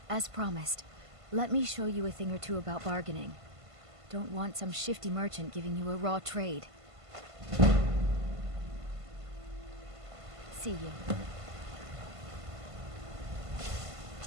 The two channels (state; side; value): late; left; 1.5 ms